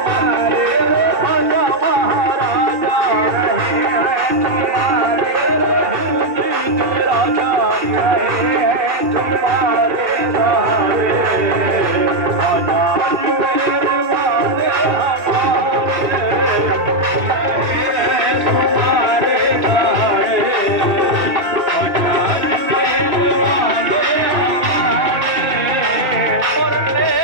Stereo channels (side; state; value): left; late; 2.7 ms